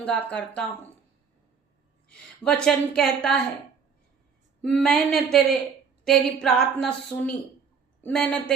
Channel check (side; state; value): left; quieter; 6.1 dB